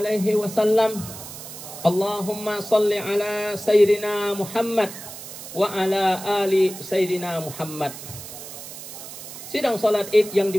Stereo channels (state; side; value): noise; right; hiss, 12 dB below the sound